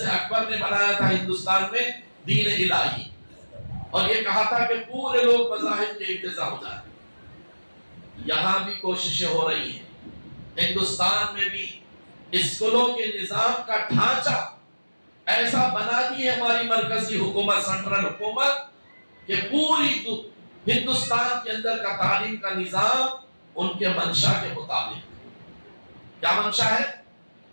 اکبر نے بنایا تھا ہندوستان میں دین الہی، اور یہ کہا تھا کہ پورے لوگ مذاہب کے اقتضا ہو جائیں۔ یہاں بھی کوششیں ہو رہی ہیں، ہندوستان میں بھی اسکولوں کے نظام کا ڈھانچہ ایسا بنا دی ہے ہماری مرکزی حکومت، سینٹرل حکومت، کہ پوری ہندوستان کے اندر کا تعلیم کا نظام ان کے منشا کے مطابق۔ کیا منشا ہے؟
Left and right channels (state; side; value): inverted; both; correlation -1.00